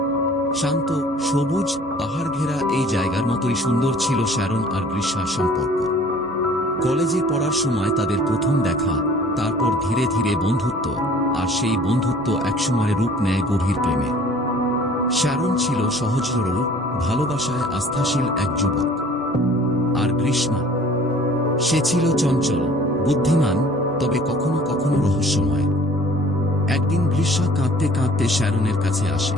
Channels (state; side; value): normal; both; correlation 0.51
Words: শান্ত, সবুজ, পাহাড় ঘেরা এই জায়গার মতোই সুন্দর ছিল শ্যারন আর গ্রীষ্মার সম্পর্ক। কলেজে পড়ার সময় তাদের প্রথম দেখা, তারপর ধীরে ধীরে বন্ধুত্ব, আর সেই বন্ধুত্ব একসময় রূপ নেয় গভীর প্রেমে। শ্যারন ছিল সহজ সরল, ভালোবাসায় আস্থাশীল এক যুবক। আর গ্রীষ্মা, সে ছিল চঞ্চল, বুদ্ধিমান, তবে কখনো কখনো রহস্যময়। একদিন গ্রীষ্মা কাঁদতে কাঁদতে শ্যারনের কাছে আসে।